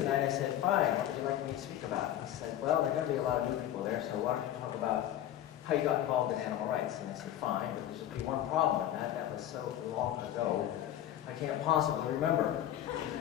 I said, fine, what would you like me to speak about? He said, well, there are going to be a lot of new people there, so why don't you talk about how you got involved in animal rights? And I said, fine, but there's just be one problem with that. That was so long ago, I can't possibly remember.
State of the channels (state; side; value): quieter; right; 12.0 dB